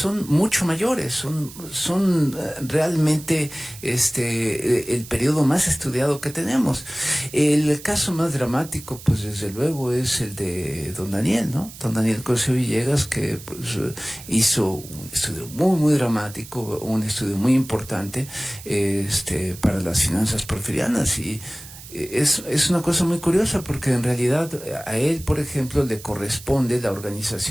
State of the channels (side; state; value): right; noise; hiss, 16 dB below the sound